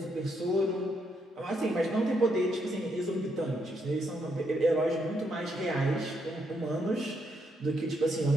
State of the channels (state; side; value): normal; both; correlation 0.77